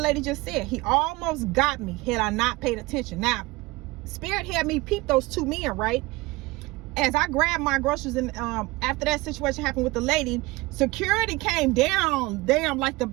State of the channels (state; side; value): quieter; left; 22.0 dB